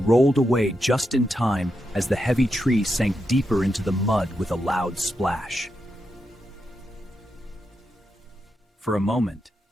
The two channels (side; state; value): both; normal; correlation 0.86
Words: away just in time as the heavy tree sank deeper into the mud with a loud splash. For a moment,